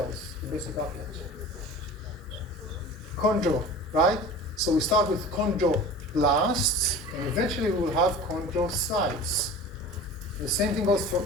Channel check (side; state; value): both; normal; correlation 0.38